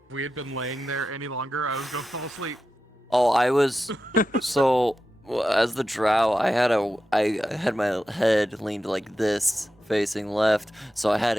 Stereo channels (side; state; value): both; normal; correlation 0.91